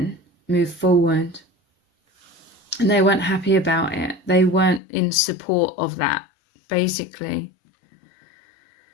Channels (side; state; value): right; drops out; at 4.8 s